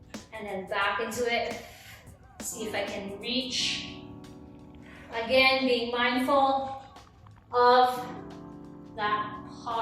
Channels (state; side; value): identical; both; correlation 1.00